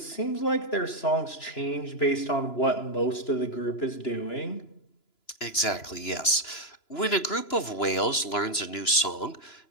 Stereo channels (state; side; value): late; right; 2.9 ms